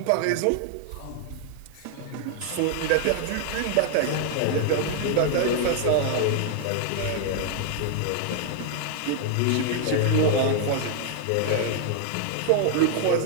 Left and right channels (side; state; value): both; different; correlation 0.00